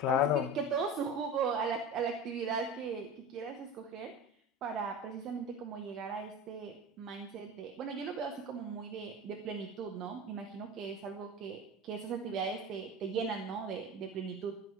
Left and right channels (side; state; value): both; normal; correlation 0.31